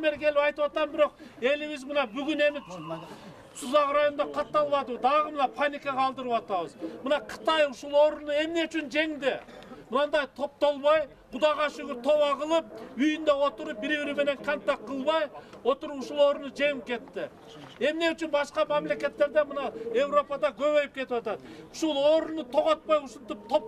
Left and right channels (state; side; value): identical; both; correlation 1.00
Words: бери келип айтып атам, бирок элибиз мына бүгүн эми Сузак районунда катталбады. Дагы мына паника калтырып атабыз. Мына Кытай ушул орунду эмне үчүн жеңди? Мындай топтолбой, Кудайга шүгүр тоба кылып, үйүндө отуруп, бири-бири менен контакт кылбай, отуруп ушул орунду жеңип кетти. Эмне үчүн башка мамлекеттерде мына Европада көбөйүп кетип атат? Ушул орунду тоготпой, ушинтип